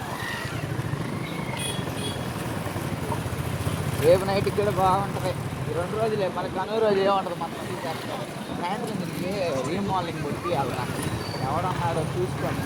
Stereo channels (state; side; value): identical; both; correlation 1.00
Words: రేపు నైట్కి కూడా బాగుంటుంది ఈ 2 రోజులే మన కనుమ రోజు ఏముంటుంది మన సాయంత్రం తిరిగి రీమోడలింగ్ కొట్టి వెళ్తా ఎవడన్నాడో చూసుకొని